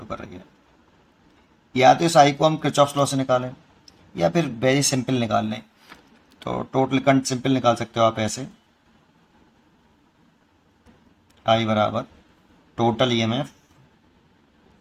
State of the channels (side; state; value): both; identical; correlation 1.00